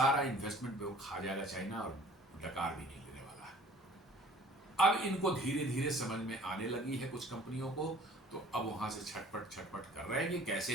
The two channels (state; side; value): normal; both; correlation 0.51